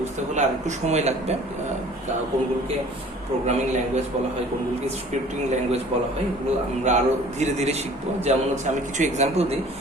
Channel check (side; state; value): both; normal; correlation 0.49